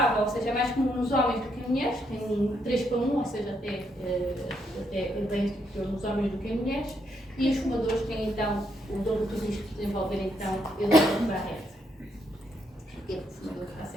ou seja, é mais comum nos homens do que em mulheres, tem 3 para 1, ou seja, até bem superior nos homens do que em mulheres, e os fumadores têm então o dobro de risco de desenvolver então edema de Barrett. Porque o fumador está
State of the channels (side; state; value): both; normal; correlation 0.76